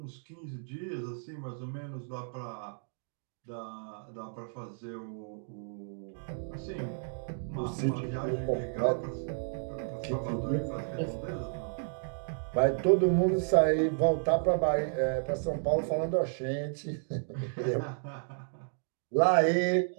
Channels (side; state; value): left; silent; digital silence